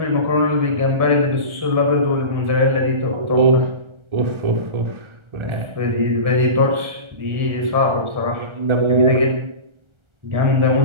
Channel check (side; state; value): left; late; 1.3 ms